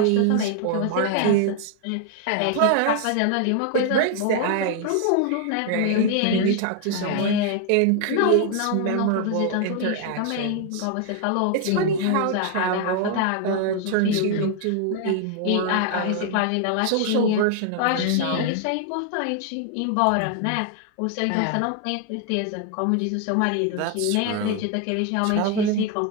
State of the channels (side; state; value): both; different; correlation 0.00